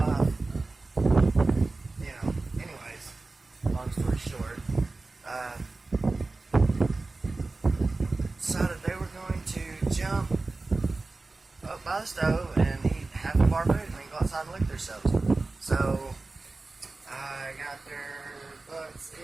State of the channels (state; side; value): quieter; left; 3.4 dB